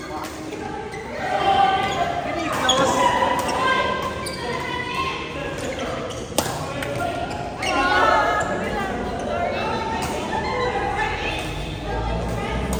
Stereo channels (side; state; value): both; identical; correlation 1.00